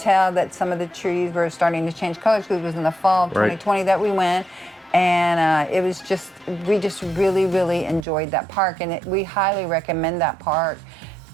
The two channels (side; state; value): left; drops out; at 8.1 s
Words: that some of the trees were starting to change colors because it was in the fall of 2020 that we went. And we just really enjoyed that park, and we highly recommend that park